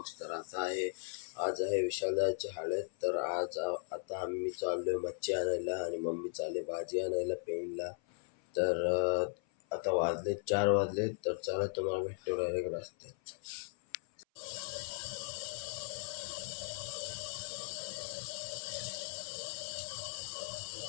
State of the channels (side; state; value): right; silent; 53 dB below the other